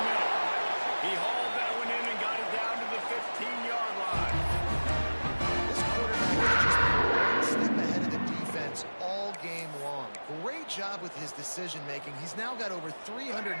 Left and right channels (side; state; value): both; inverted; correlation -1.00